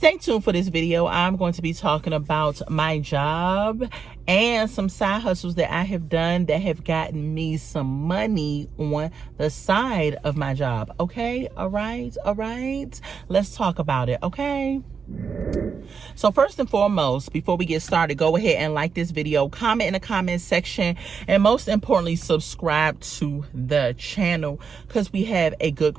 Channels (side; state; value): left; quieter; 6.0 dB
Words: tuned for this video. I'm going to be talking about my job and some side hustles that I have done that have gotten me some money on the side of my job. Okay, all right. Let's talk about it, okay? So first and foremost, before we get started, go ahead and like this video, comment in the comment section, and most importantly, subscribe to the channel because we have a